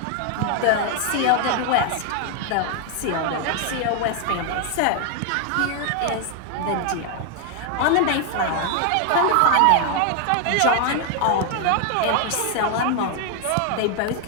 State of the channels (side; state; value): both; different; correlation 0.00